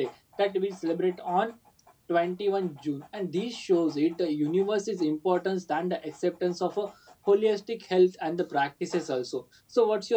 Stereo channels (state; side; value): identical; both; correlation 1.00